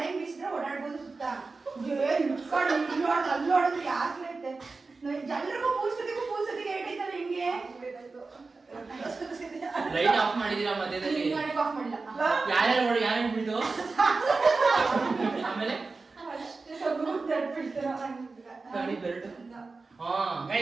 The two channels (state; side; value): quieter; left; 4.0 dB